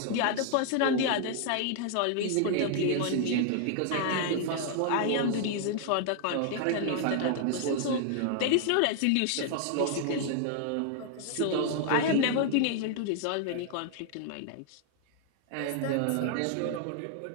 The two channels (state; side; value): different; both; correlation 0.00